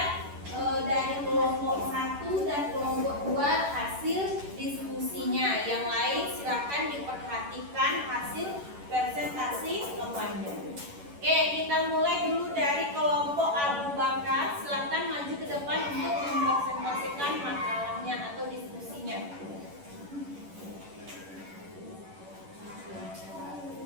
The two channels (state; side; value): late; left; 11 ms